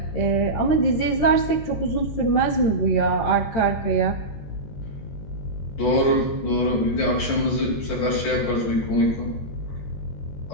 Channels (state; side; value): late; right; 13 ms